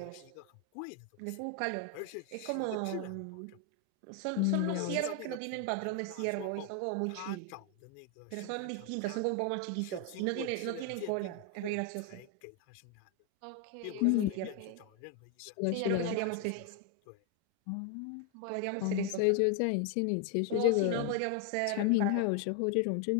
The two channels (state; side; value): different; both; correlation 0.01